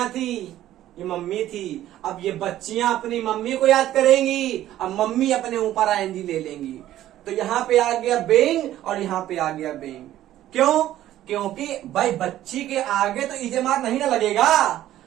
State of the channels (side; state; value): left; quieter; 13.3 dB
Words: थी, ये मम्मी थी, अब ये बच्चियां अपनी मम्मी को याद करेंगी, अब मम्मी अपने ऊपर आईएनजी ले लेंगी। तो यहां पे आ गया बेइंग और यहां पे आ गया बेइंग। क्यों? क्योंकि भाई बच्ची के आगे तो इजेमार नहीं ना लगेगा।